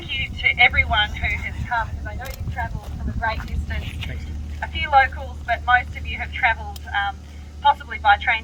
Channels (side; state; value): both; identical; correlation 1.00